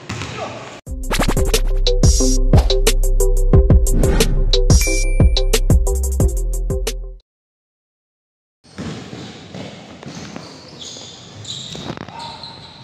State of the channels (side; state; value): both; identical; correlation 1.00